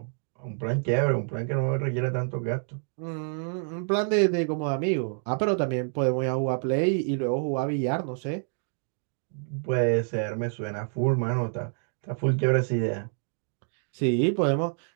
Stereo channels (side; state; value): left; silent; 60 dB below the other